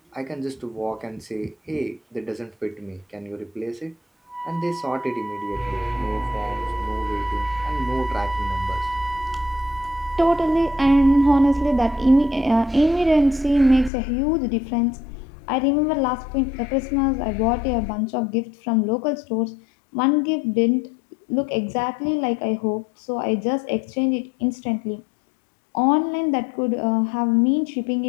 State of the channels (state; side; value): drops out; right; at 13.9 s